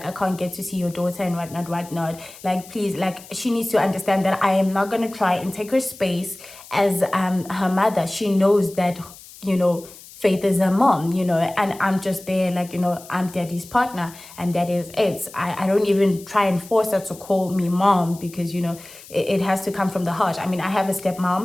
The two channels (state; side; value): noise; left; hiss, 19 dB below the sound